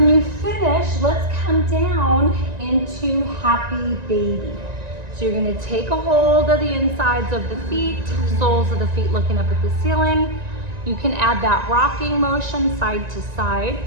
you finish, let's come down into happy baby. So you're gonna take a hold of the insides of the feet, soles of the feet looking up at the ceiling. You can add that rocking motion side to side.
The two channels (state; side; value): late; left; 1.9 ms